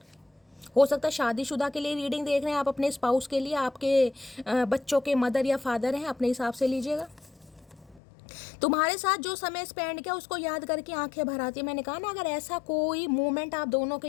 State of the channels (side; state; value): right; drops out; at 8.0 s